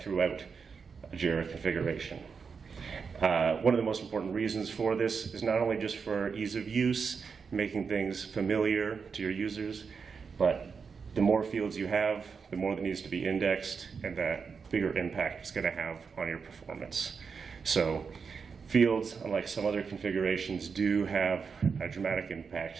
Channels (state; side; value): quieter; left; 5.6 dB